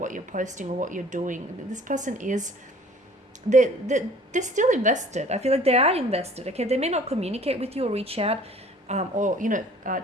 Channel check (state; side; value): normal; both; correlation 0.51